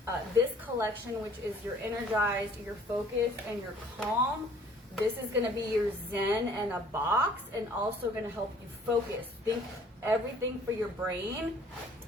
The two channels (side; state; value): both; normal; correlation 0.56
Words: this collection, which is your energized, your focused, and your calm. This is gonna be your zen in a box, and also gonna help you focus. Think everything for your brain.